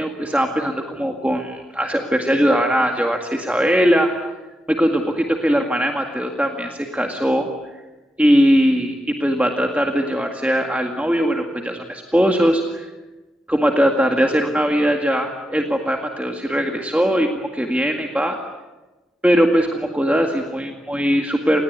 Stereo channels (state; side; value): normal; both; correlation 0.87